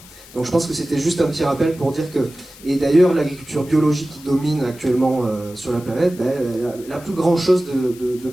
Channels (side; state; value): left; noise; hiss, 21 dB below the sound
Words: Donc je pense que c'était juste un petit rappel pour dire que... Et d'ailleurs, l'agriculture biologique qui domine actuellement sur la planète, elle a plus grand-chose de